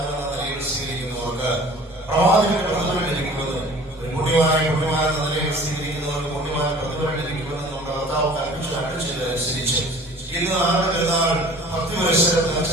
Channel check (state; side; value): normal; both; correlation 0.46